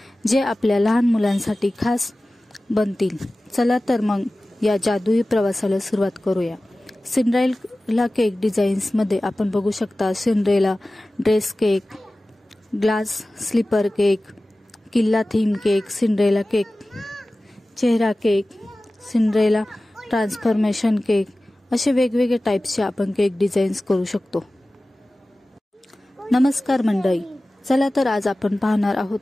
जे आपल्या लहान मुलांसाठी खास बनतील। चला तर मग या जादुई प्रवासाला सुरुवात करूया। सिंड्रेला केक डिझाईन्स मध्ये आपण बघू शकता Cinderella dress cake, glass slipper cake, किल्ला थीम केक, सिंड्रेला केक, चेहरा केक, सिंड्रेला ट्रान्सफॉर्मेशन केक असे वेगवेगळे टाइप्सचे आपण केक डिझाईन्स करू शकतो। नमस्कार मंडळी, चला तर आज आपण पाहणार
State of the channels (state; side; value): normal; both; correlation 0.97